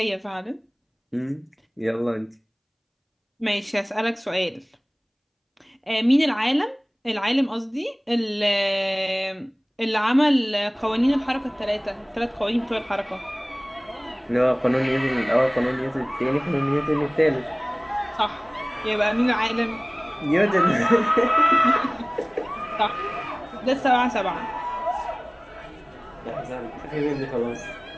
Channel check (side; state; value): both; identical; correlation 1.00